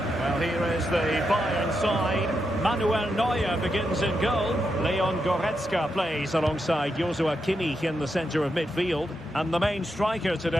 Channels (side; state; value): both; normal; correlation 0.84